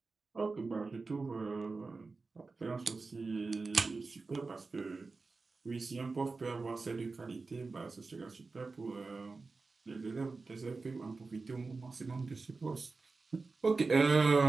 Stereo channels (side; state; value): left; quieter; 4.0 dB